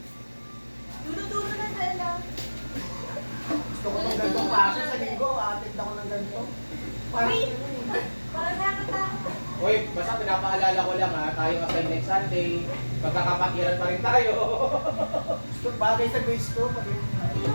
Dulo-dulo na dala. Gusto ko ng gantong kaso sa linggo. Atid ako ng ganito. Uy! Parang nakakatakot. Uy, basta pinapaalala ko lang ha, tayo kasi next Sunday, magkakapatiran pa rin tayo. Gusto bagay sa base ko. Pag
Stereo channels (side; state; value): both; inverted; correlation -1.00